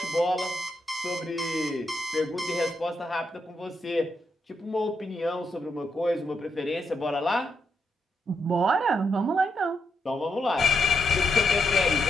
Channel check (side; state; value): both; normal; correlation 0.81